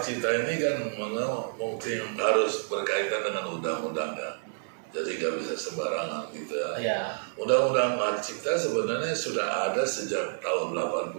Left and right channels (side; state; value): left; silent; 59 dB below the other